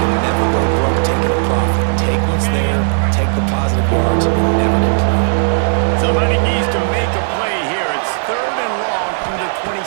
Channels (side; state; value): left; silent; digital silence